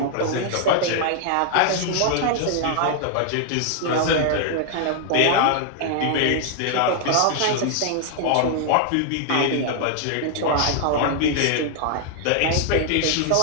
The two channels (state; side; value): different; both; correlation 0.00